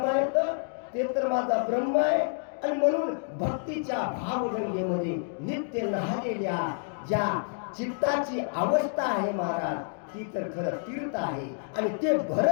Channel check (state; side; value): silent; right; digital silence